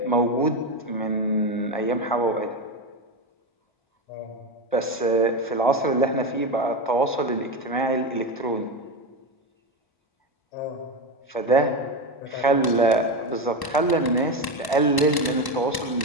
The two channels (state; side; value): late; right; 1.0 ms